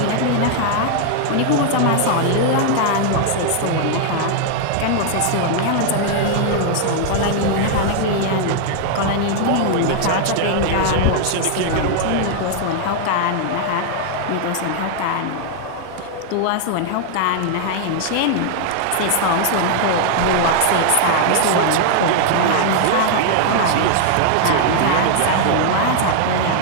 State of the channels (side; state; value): both; different; correlation 0.00